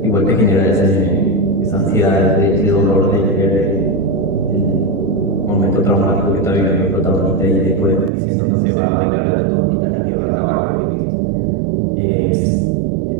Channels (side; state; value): left; drops out; at 8.1 s